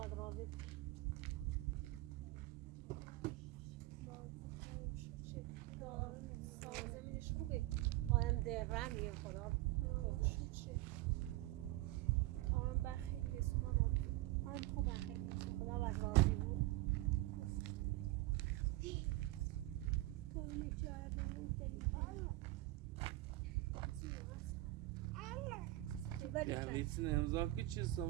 راضی زمینش خوبه آدم درمیه خدا آرام بر خیلی سمان آبی آدم خوبه خیلی خدا بد راضی بود تو میچاره بمون یه ویتین امضا که چی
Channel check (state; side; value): quieter; left; 18.1 dB